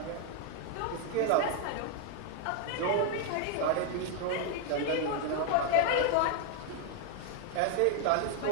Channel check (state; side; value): different; both; correlation 0.00